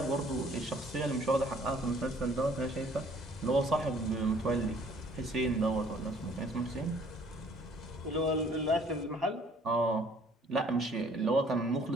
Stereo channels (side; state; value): both; normal; correlation 0.58